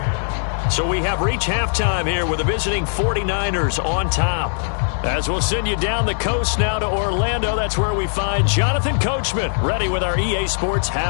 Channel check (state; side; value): silent; right; 58 dB below the other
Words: So we have reached halftime here with the visiting 49ers on top. As we'll send you down the coast now to Orlando, that's where we find Jonathan Coachman, ready with our EA Sports